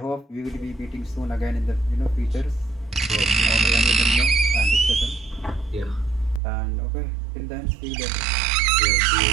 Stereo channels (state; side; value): drops out; left; at 6.4 s